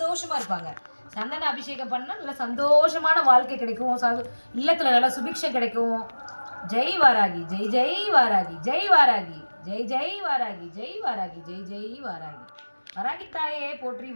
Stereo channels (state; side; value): inverted; both; correlation -1.00